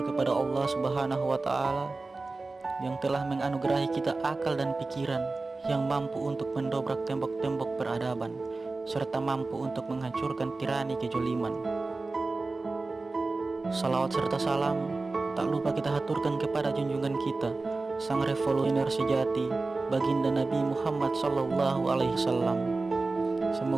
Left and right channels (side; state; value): left; quieter; 3.5 dB